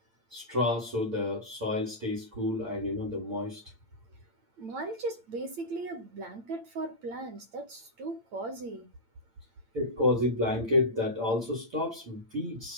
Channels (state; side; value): late; left; 8.8 ms